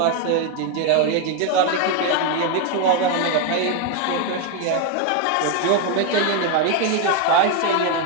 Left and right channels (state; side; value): different; both; correlation 0.01